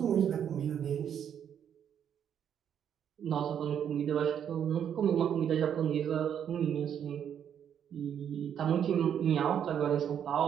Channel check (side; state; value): left; quieter; 8.9 dB